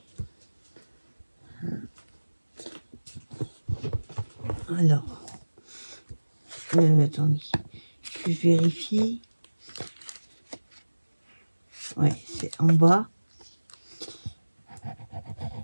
Alors, attendez, je vérifie. Ouais, c'est en bas.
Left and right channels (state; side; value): inverted; both; correlation -1.00